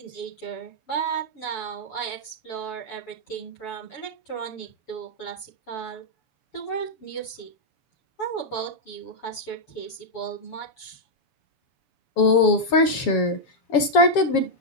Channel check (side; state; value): right; late; 7.2 ms